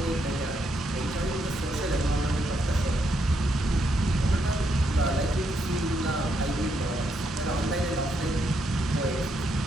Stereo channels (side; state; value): both; normal; correlation 0.78